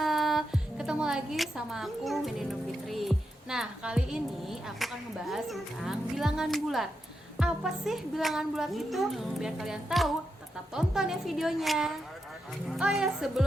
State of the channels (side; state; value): both; normal; correlation 0.86